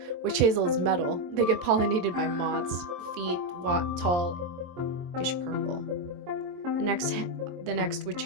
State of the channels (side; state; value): left; late; 23 ms